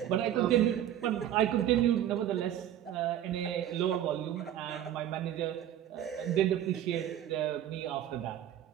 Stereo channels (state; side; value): quieter; left; 11.3 dB